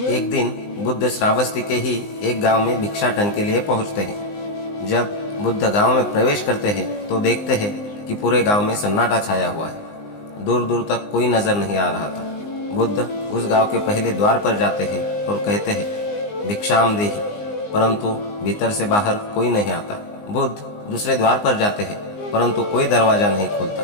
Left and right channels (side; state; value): right; late; 19 ms